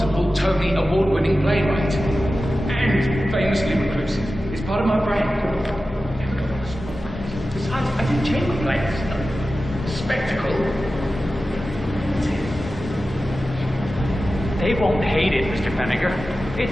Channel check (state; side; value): normal; both; correlation 0.94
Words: Tony award-winning playwright. And famously reclusive. It's part of my brand. Besides, I do chamber plays. Spectacle. They won't hate it, Mr. Feniger.